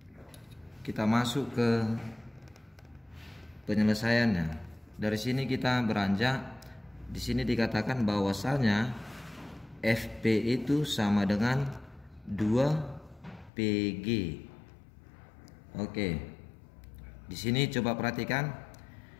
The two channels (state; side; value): drops out; right; at 13.5 s